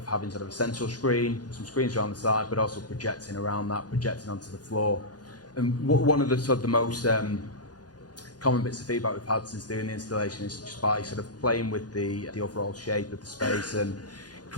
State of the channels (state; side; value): late; right; 0.69 ms